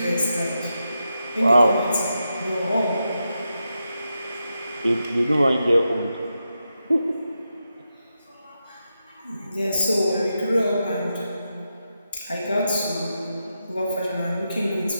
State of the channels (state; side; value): inverted; both; correlation -0.87